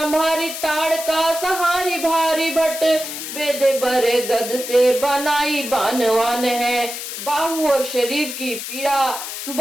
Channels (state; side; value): noise; left; hiss, 7 dB below the sound